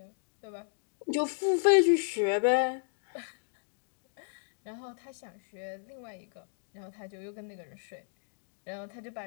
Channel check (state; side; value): silent; right; digital silence